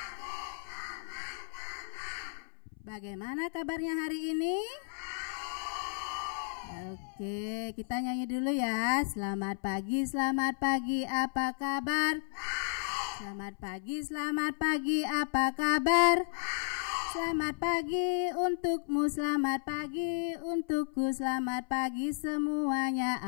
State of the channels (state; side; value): silent; right; 55 dB below the other